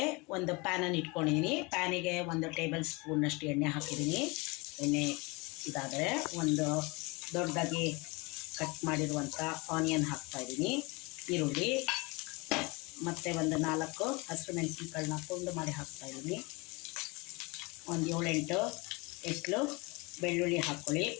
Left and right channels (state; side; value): quieter; right; 26.8 dB